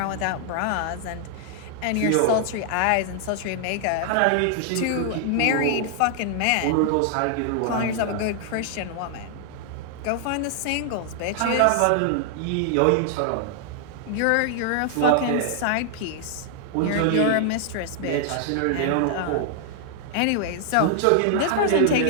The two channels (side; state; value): both; different; correlation 0.00